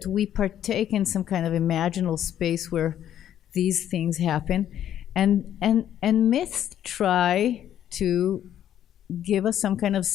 we partake in some kind of imaginal space where these things happen, and myths try to give us some kind of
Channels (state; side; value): quieter; right; 10.7 dB